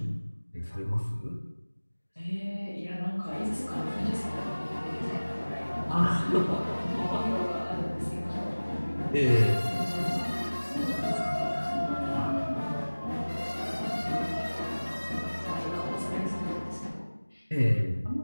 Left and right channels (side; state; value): both; inverted; correlation -1.00